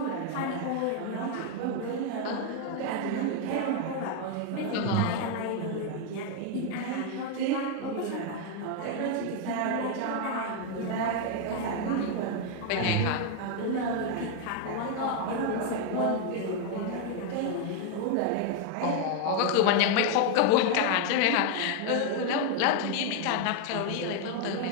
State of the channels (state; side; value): different; both; correlation 0.01